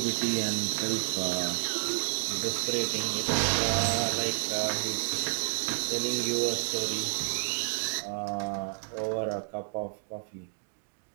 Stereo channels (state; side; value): silent; left; 58 dB below the other